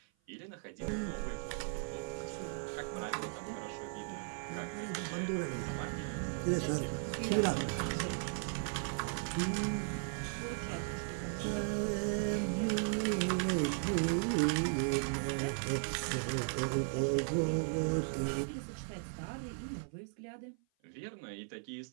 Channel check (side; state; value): left; silent; 53 dB below the other